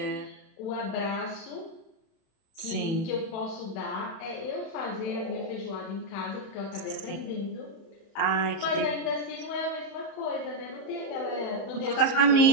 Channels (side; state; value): right; late; 30 ms